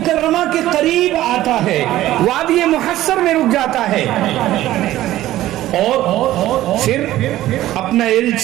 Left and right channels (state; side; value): quieter; left; 14.7 dB